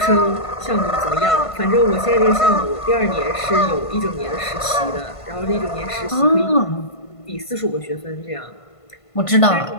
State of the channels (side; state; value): right; late; 1.5 ms